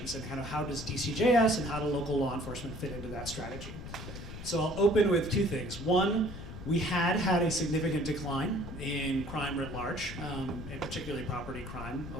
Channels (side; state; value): left; noise; rumble, 10 dB below the sound